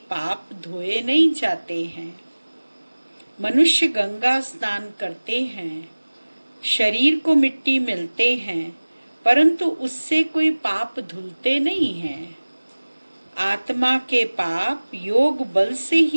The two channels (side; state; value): both; inverted; correlation -1.00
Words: पाप धोए नहीं जाते हैं। मनुष्य गंगा स्नान करते हैं, शरीर को मिट्टी मिलते हैं, परंतु उससे कोई पाप धुलते नहीं हैं। आत्मा के पाप योग बल से